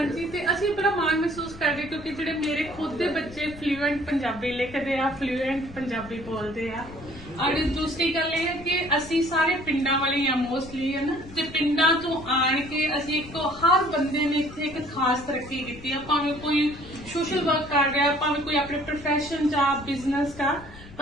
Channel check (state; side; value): noise; left; rumble, 17 dB below the sound